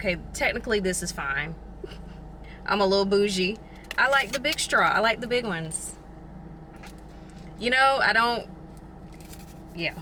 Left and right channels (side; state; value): both; identical; correlation 1.00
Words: technically this is fine. I'm a little bougie. I like the big straw. I like the big ones. You know, I don't, yeah,